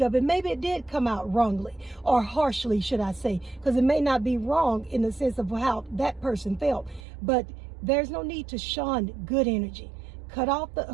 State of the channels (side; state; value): left; drops out; at 7.0 s